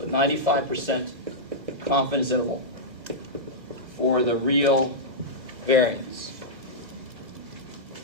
95% confidence interval for the real variance.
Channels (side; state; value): left; late; 1.5 ms